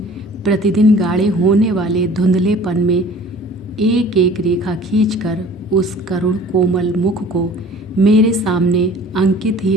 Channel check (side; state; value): both; normal; correlation 0.48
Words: प्रतिदिन गाढ़े होने वाले धुंधलेपन में एक एक रेखा खींचकर उस करुण कोमल मुख को मेरे सामने अंकित ही